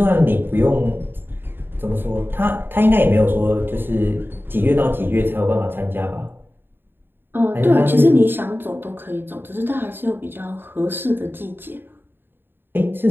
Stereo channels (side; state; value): left; late; 0.10 ms